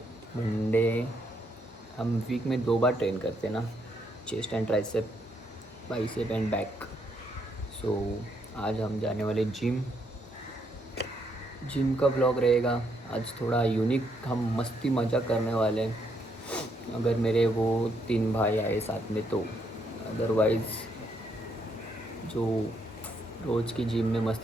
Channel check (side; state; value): both; normal; correlation 0.74